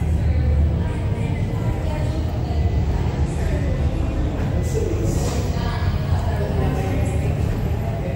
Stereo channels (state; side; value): identical; both; correlation 1.00